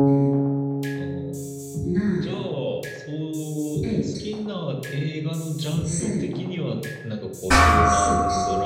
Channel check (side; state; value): both; identical; correlation 1.00